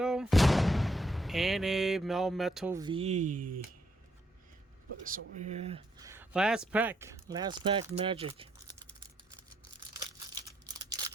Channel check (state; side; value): normal; both; correlation 0.74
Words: and a Melmetal V. Put this over here. Last pack magic.